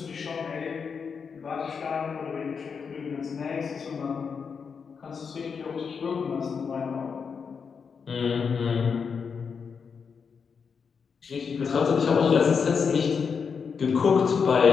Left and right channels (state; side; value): quieter; right; 6.0 dB